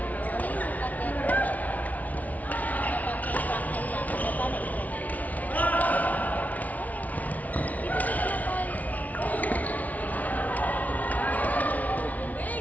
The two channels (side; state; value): right; late; 0.073 ms